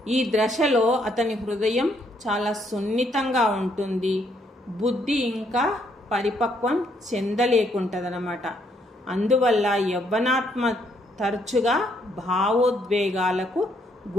ఈ దశలో అతని హృదయం చాలా సున్నితంగా ఉంటుంది, బుద్ధి ఇంకా పరిపక్వం చెందలేకుంటుందన్నమాట. అందువల్ల యవ్వనాత్మ తరచుగా భావోద్వేగాలకు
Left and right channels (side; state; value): both; normal; correlation 0.71